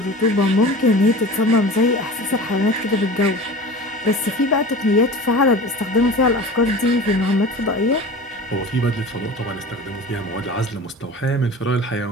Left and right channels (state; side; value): normal; both; correlation 0.36